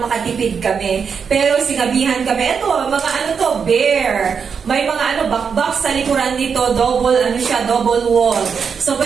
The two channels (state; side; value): quieter; left; 6.3 dB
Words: makatipid kami. Pero sinabihan kami, eto, mga ano to, bare. May mga bakbak sa likuran nito, double wall. So